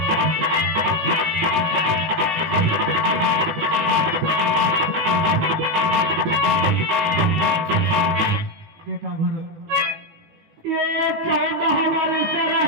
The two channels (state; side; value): late; left; 19 ms